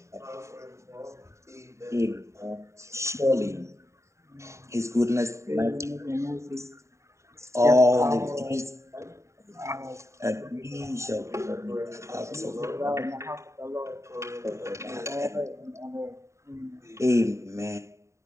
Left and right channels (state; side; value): late; left; 0.14 ms